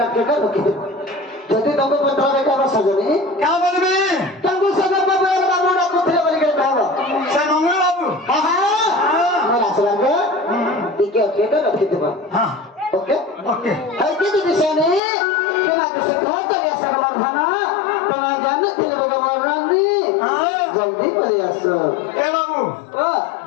ओके कर रखिए जति तंको पत्र में का सजनी क्या बोलबे तंको सजन बाबू बाबू ना कुथे बोल के कहबो से मंगल बाबू हां मैं आसला के ठीक है ओके कर रखिए हां ओके ओके है कि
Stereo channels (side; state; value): right; drops out; at 15.0 s